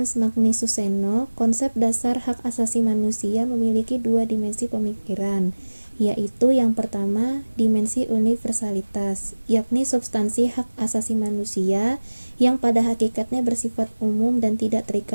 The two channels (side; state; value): both; inverted; correlation -1.00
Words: Magnus Suseno, konsep dasar hak asasi manusia memiliki dua dimensi pemikiran, yaitu yang pertama, dimensi universalitas, yakni substansi hak asasi manusia yang pada hakikatnya bersifat umum dan tidak